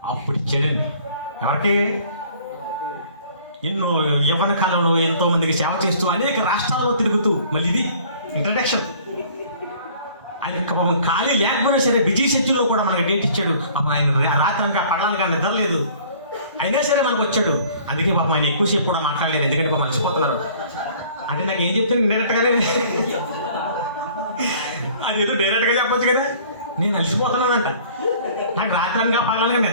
అప్పుడు ఇచ్చాడండి. ఎవరికి? ఎన్నో యవ్వన కాలంలో ఎంతో మందికి సేవ చేస్తూ అనేక రాష్ట్రాల్లో తిరుగుతూ, మళ్ళీ ఇది ఇంట్రడక్షన్. ఆయన పాపం ఖాళీ లేకపోయినా సరే బిజీ షెడ్యూల్లో కూడా మనకు డేట్ ఇచ్చాడు. పాపం ఆయన రాత్రి అనక పగలనక నిద్రలేదు, అయినా సరే మనకు వచ్చాడు. అందుకే పాపం ఆయన ఎక్కువసేపు కూడా మాట్లాడలేదు, ఎందుకంటే పాపం అలసిపోతున్నారు. అంటే నాకు ఏం చెప్తే డైరెక్ట్గానే అదేదో డైరెక్ట్గా చెప్పొచ్చు కదా, నేను అలసిపోతున్నానంట, నాకు రాత్రి అనక పగలనక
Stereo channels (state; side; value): inverted; both; correlation -0.52